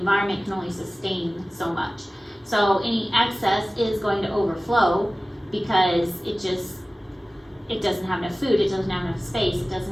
can only sustain so much. So any excess is going to overflow because it doesn't have enough food, it doesn't have enough space, it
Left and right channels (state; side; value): normal; both; correlation 0.97